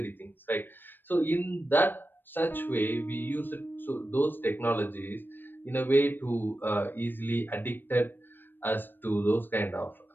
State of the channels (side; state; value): right; late; 0.094 ms